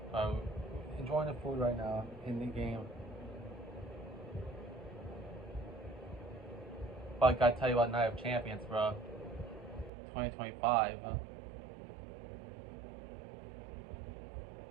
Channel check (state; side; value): drops out; left; at 9.9 s